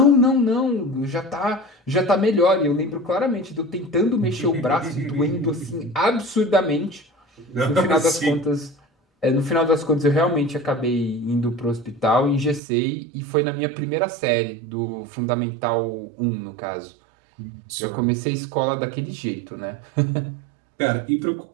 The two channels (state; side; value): drops out; left; at 12.6 s